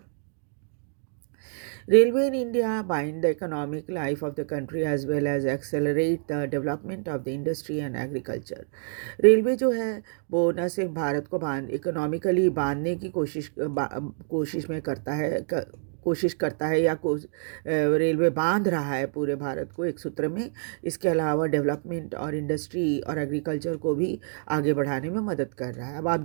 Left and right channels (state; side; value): silent; left; digital silence